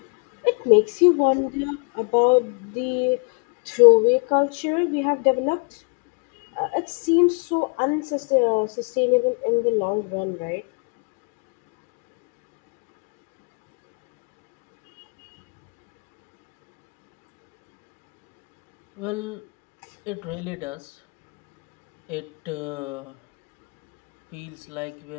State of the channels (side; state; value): right; quieter; 35.0 dB